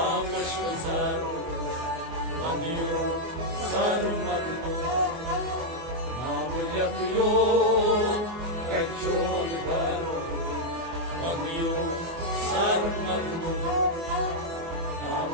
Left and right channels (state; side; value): late; left; 24 ms